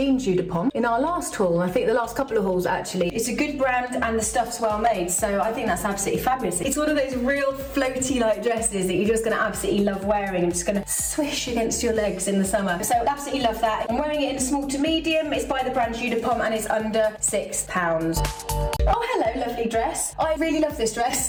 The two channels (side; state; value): both; identical; correlation 1.00